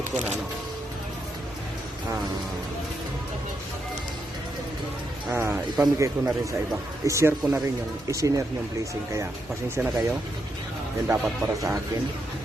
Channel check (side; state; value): both; normal; correlation 0.81